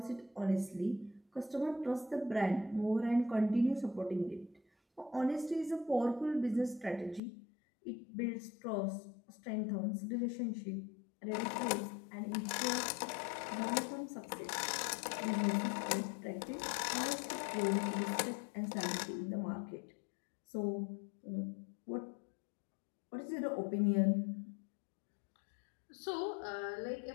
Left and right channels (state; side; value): drops out; right; at 7.2 s